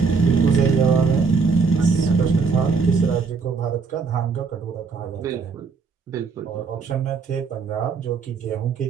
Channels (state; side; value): quieter; left; 5.0 dB